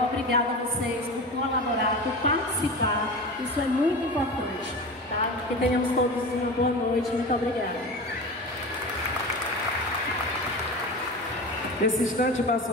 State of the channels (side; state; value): both; normal; correlation 0.29